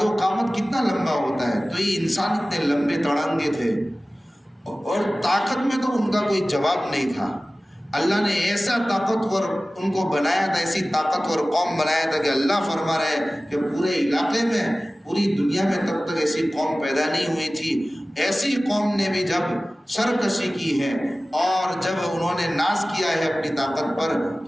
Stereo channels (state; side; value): normal; both; correlation 0.97